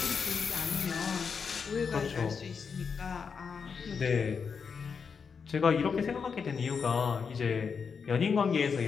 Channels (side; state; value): right; quieter; 5.9 dB